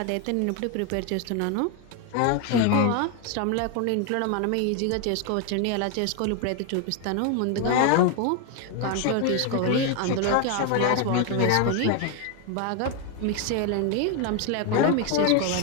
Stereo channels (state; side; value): different; both; correlation 0.01